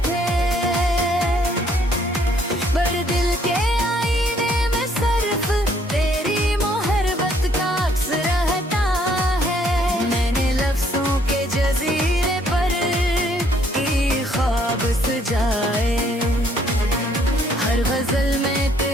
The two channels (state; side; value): normal; both; correlation 0.65